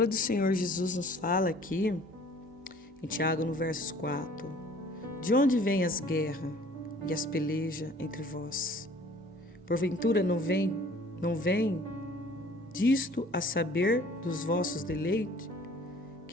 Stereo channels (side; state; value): both; normal; correlation 0.52